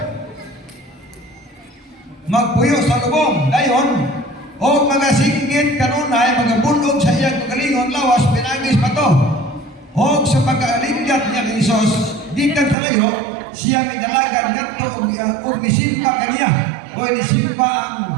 Magpuyo sa lubong. Dayon, o magasinggit kanunay, magabundog sa iyang kagalingon, lawas, pinagis pa to. O sa pagkaalinggat niya kay Isos, gikan sa layo, siya may dalagan ngadto og misimba kaniya. O nisimba ang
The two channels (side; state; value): left; drops out; at 12.8 s